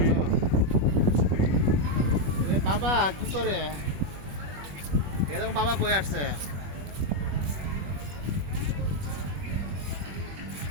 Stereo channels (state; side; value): late; left; 21 ms